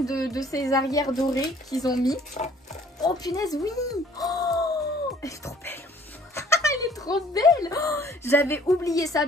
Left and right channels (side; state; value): both; normal; correlation 0.57